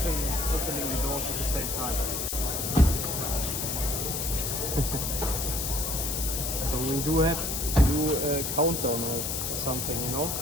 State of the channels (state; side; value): noise; left; hiss, 2 dB below the sound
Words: the doors at the same time. So we do have to do a countdown or something, you know?